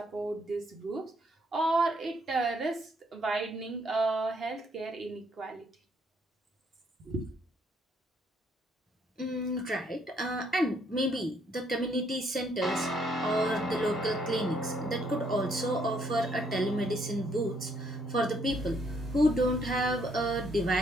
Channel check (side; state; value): both; normal; correlation 0.69